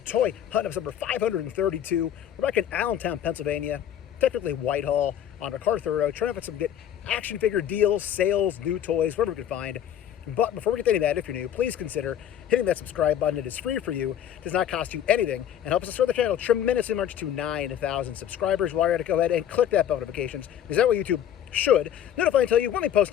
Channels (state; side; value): quieter; right; 10.1 dB